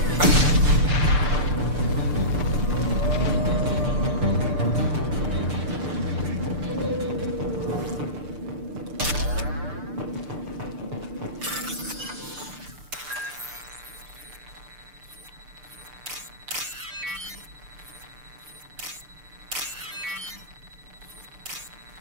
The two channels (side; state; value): left; late; 6.7 ms